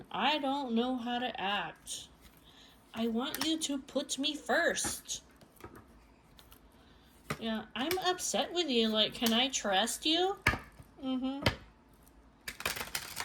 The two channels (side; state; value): both; identical; correlation 1.00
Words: I don't know how to act. I want you to put me first. Yeah, I'm upset with you. Like, can I trust you?